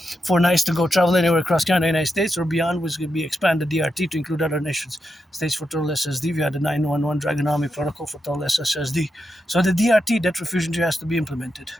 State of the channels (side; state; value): both; normal; correlation 0.86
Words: 4 nights to go travel anywhere across Canada and the United States or beyond, which will be expanded DRT to include other nations. States for total SSD via the 911 Dragon Army protocol for total SSSD. So the DRT, debt refusion, has to be implemented.